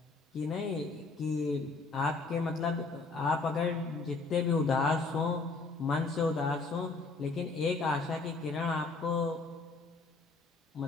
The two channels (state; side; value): quieter; right; 3.9 dB